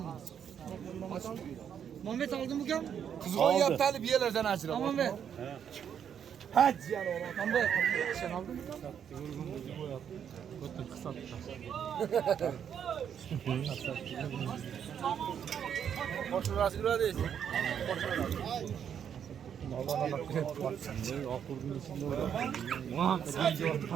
Muhammed oldi bu kam? Qizg'on yaptalib yerlardan ajrab. Muhammed. Haj yana o'rab. Muhammed, sen oldingmi? Boshqasi uradi.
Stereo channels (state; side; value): quieter; left; 8.4 dB